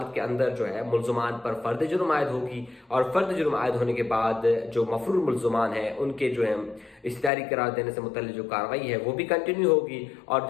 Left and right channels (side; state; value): right; drops out; at 7.3 s